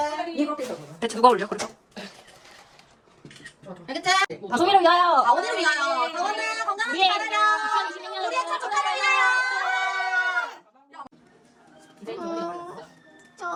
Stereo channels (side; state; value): both; identical; correlation 1.00